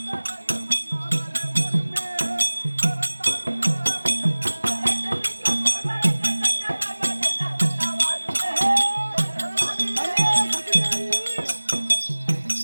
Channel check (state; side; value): inverted; both; correlation -1.00